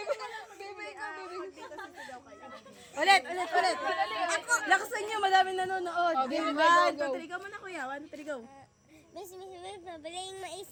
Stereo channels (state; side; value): identical; both; correlation 1.00